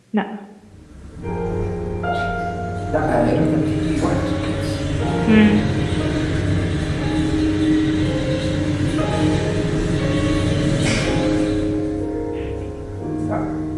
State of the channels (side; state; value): both; identical; correlation 1.00